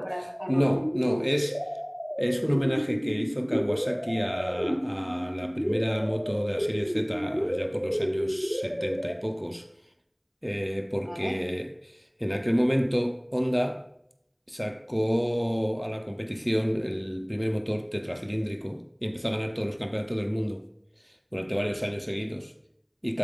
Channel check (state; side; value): identical; both; correlation 1.00